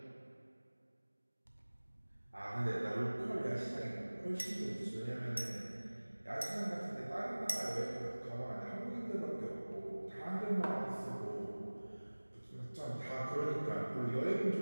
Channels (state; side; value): inverted; both; correlation -1.00